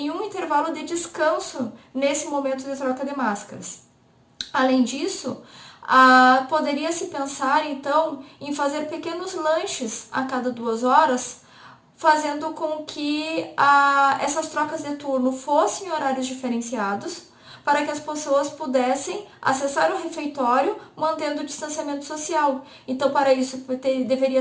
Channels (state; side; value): identical; both; correlation 1.00